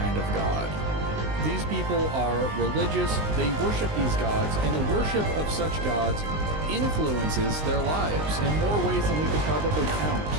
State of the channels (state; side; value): late; left; 19 ms